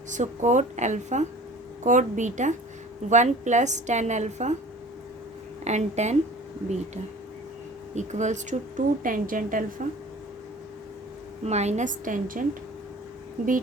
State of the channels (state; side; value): normal; both; correlation 0.44